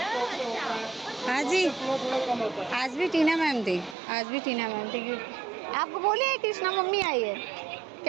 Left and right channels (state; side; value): drops out; left; at 4.0 s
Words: हाँ जी। थोड़ा कम होता है। आज भी टीना मैम थी, आज भी टीना मैम थी। आपको बोली है कृष्णा मम्मी आई है,